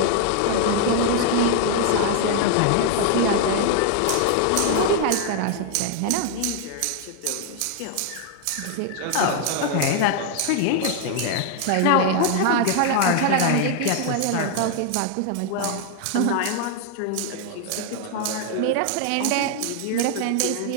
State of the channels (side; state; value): both; different; correlation 0.00